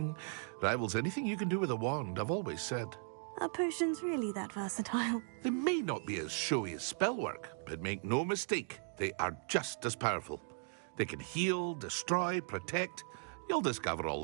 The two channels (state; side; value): silent; left; 53 dB below the other